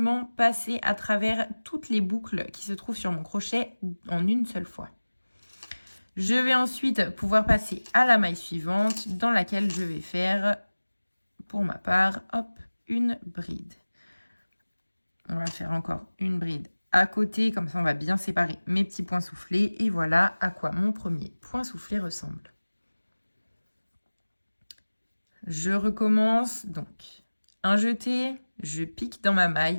passer à travers toutes les boucles qui se trouvent sur mon crochet en une seule fois. Je vais ensuite pouvoir passer à la maille suivante dans laquelle je vais faire, pour ma part, hop, une bride. On va faire encore une bride à côté, comme ça on va bien séparer mes petits points soufflés. Et voilà à quoi mon premier point soufflé ressemble. Je recommence donc un jeté, je pique dans ma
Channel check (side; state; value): both; inverted; correlation -1.00